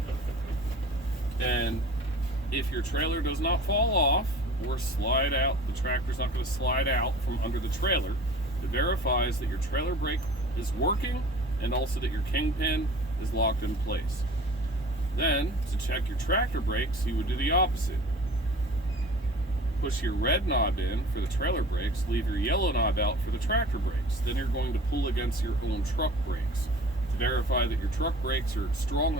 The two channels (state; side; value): normal; both; correlation 0.43